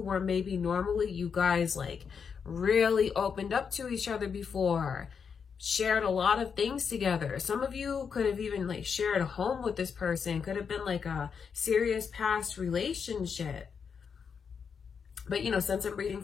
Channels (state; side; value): quieter; right; 6.4 dB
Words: maybe normally you guys like really opened up to each other before, shared a lot of things together. Some of you could have even like shared a home with this person, could have been like a serious past relationship. But you know, since I'm reading